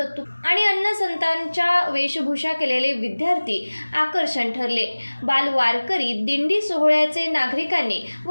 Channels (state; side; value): inverted; both; correlation -1.00